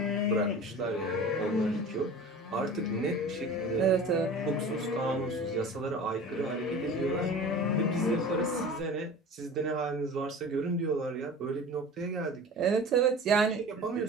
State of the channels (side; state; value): both; normal; correlation 0.38